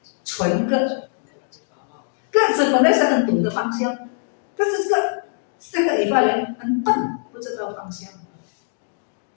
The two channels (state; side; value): silent; right; digital silence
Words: 纯个子本来是很懂得方向，但是这个以法莲很笨，不知道方向。